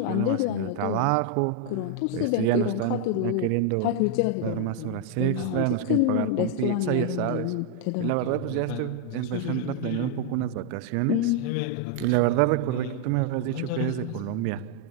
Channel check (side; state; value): both; different; correlation 0.00